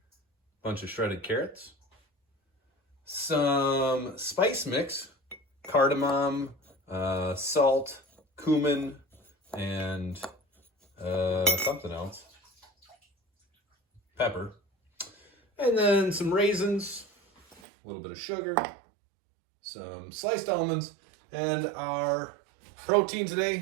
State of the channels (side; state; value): left; drops out; at 17.6 s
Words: bunch of shredded carrots, some spice mix, cardamom, salt, cumin, and something else, pepper, and then some raisins, a little bit of sugar, some sliced almonds, and our protein